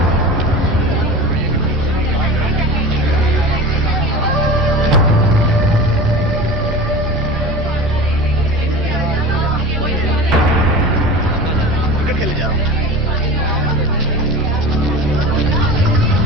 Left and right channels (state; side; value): normal; both; correlation 0.33